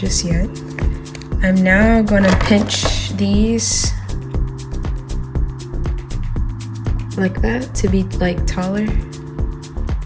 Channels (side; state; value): both; identical; correlation 1.00